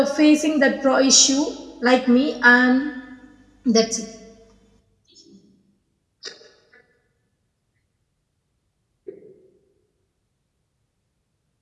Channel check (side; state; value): both; identical; correlation 1.00